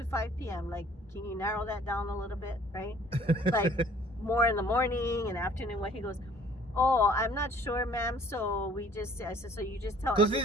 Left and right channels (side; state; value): both; normal; correlation 0.55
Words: 5 p.m. Like, can you narrow that down a little bit, right? Like, more in the morning and afternoon. What he goes, oh, I'm not sure, ma'am. So I said, so you just tell Because he's